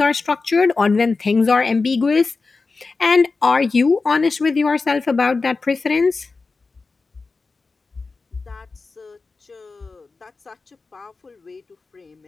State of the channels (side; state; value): right; quieter; 4.1 dB